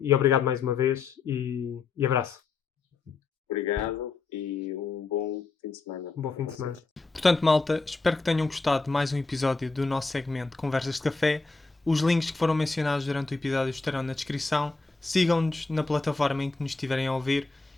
obrigado mais uma vez e abraço. Obrigado e um bom fim de semana. Um bom fim de semana. Portanto, malta, espero que tenham gostado de mais um episódio do nosso segmento Conversas de Café. Os links que foram mencionados durante o episódio estarão na descrição. Sigam-nos na plataforma em que nos estiverem a ouvir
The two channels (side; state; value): right; quieter; 4.0 dB